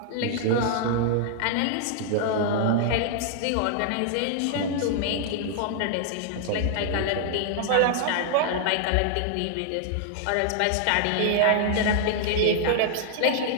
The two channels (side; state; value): both; different; correlation 0.00